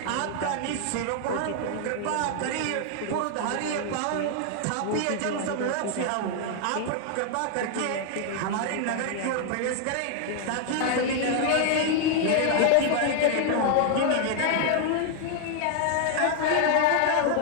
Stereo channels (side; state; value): both; different; correlation 0.00